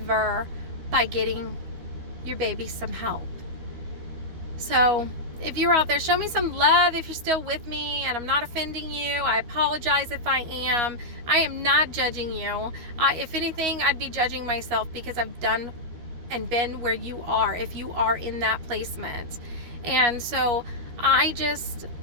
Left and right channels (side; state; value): left; late; 13 ms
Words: by getting your baby some help. So if you're out there, show me some love if you're still with me and I'm not offending you. I apologize if I am. I am not judging you. If anything, I'd be judging myself, because I've done and been where you are, if you are in that placement. And so I just